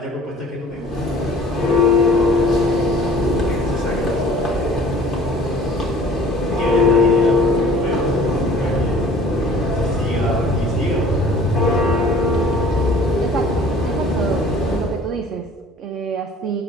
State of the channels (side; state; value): both; normal; correlation 0.50